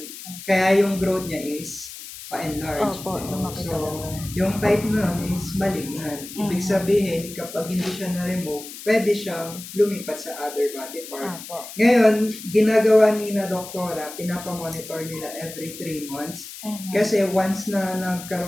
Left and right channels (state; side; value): noise; left; hiss, 13 dB below the sound